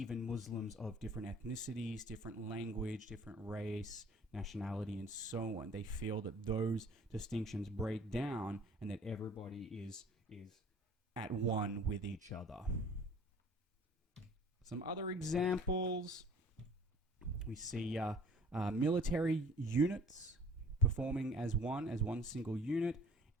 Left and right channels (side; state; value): both; normal; correlation 0.50